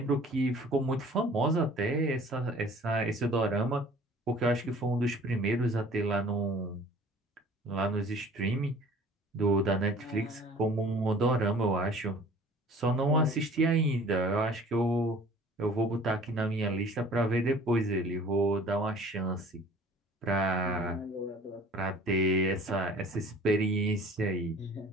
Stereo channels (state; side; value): normal; both; correlation 0.49